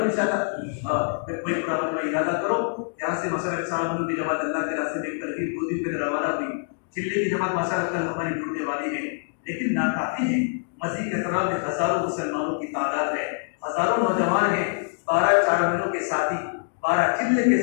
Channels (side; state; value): right; silent; digital silence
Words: انشاءاللہ۔ کوئی پرابلم میں ارادہ کرو، یہاں سے مثلا 4 ملک کی جماعت اللہ کے راستے میں ایک ترغیب 2 دن پہ روانہ ہوئی، چلے کی جماعت ماشاءاللہ کل ہماری ٹوٹنے والی ہے، لیکن ناکافی ہے۔ مزید احترام میں ہزاروں مسلمانوں کی تعداد ہے، ہزاروں نوجوان ہیں، 12 چارمینوں کے ساتھی، 12 چلے کے